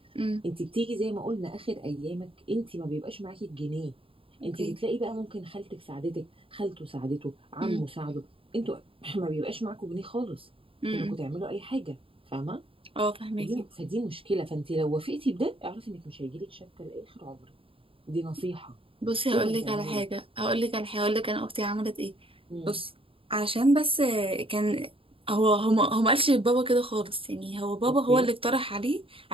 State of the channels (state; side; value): late; left; 0.26 ms